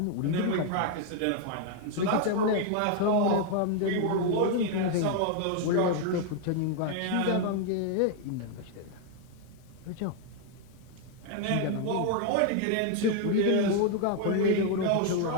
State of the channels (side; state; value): both; different; correlation 0.00